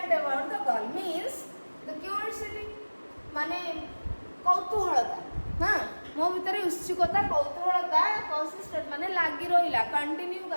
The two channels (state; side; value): inverted; both; correlation -1.00